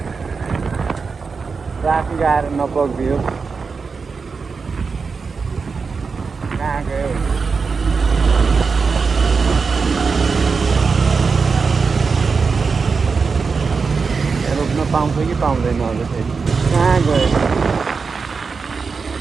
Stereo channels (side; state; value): left; quieter; 5.0 dB